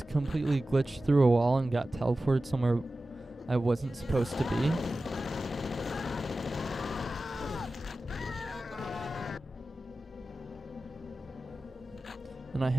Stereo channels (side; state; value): both; normal; correlation 0.95